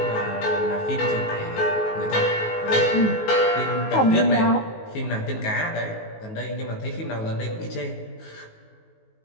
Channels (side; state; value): right; late; 19 ms